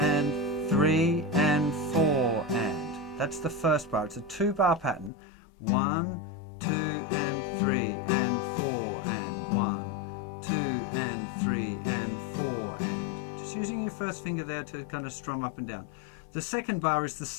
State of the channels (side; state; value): right; drops out; at 5.1 s